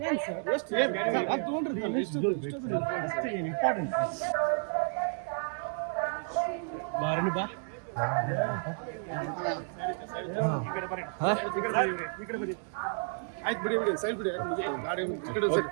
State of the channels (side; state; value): left; silent; 57 dB below the other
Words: ఏం సార్ ಎಷ್ಟು ಅದು ತಗೊಂಡ್ರಿ ಎಷ್ಟು ಇಂಪಾರ್ಟೆಂಟ್ ಬಾರನಿ ಬಾ ಆಯ್ತು ಬಿಡಿ ಸೈಡ್ ಬಿಡಿ